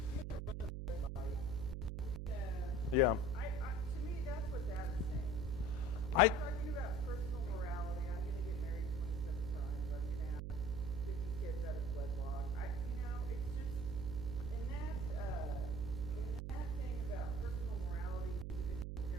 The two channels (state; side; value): noise; right; hum, 3 dB below the sound